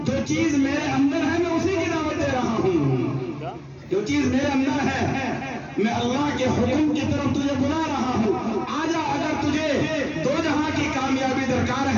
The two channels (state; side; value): identical; both; correlation 1.00